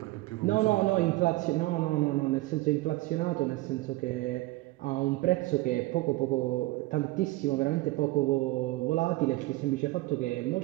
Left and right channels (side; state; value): left; quieter; 19.7 dB